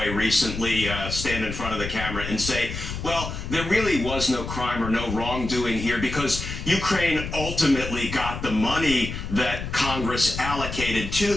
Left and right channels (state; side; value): noise; left; rumble, 7 dB below the sound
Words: recently stand in front of the camera and say, well, there really was no crime or no wrongdoing here because Ukraine ultimately got the money that Congress allocated to